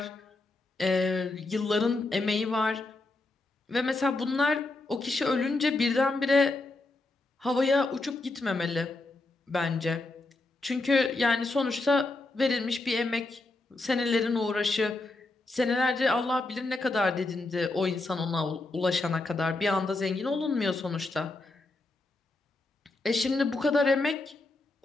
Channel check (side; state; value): right; quieter; 3.1 dB